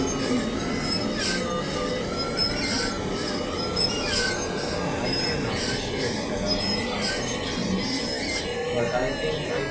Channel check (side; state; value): both; identical; correlation 1.00